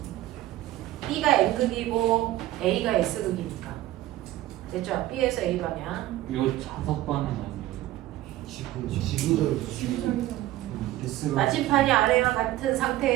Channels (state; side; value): quieter; left; 15.2 dB